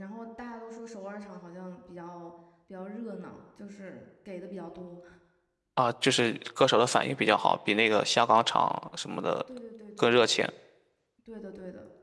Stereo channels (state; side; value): identical; both; correlation 1.00